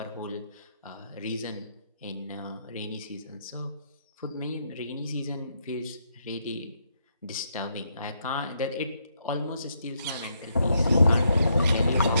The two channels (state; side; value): inverted; both; correlation -0.77